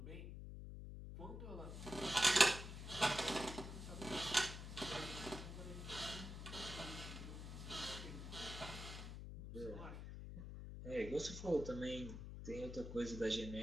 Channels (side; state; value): left; noise; hum, 8 dB below the sound